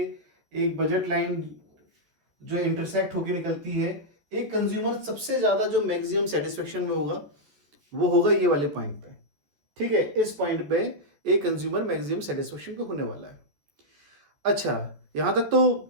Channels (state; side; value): late; left; 14 ms